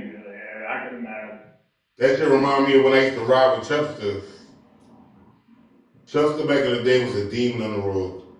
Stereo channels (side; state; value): both; identical; correlation 1.00